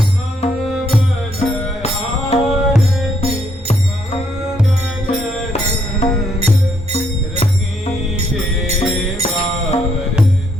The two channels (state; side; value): normal; both; correlation 0.72